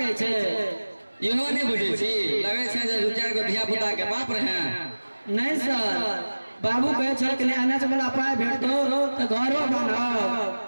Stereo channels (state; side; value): inverted; both; correlation -1.00